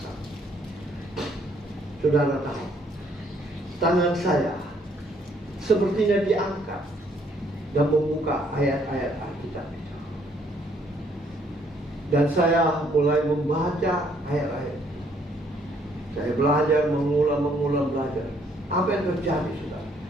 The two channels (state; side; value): normal; both; correlation 0.67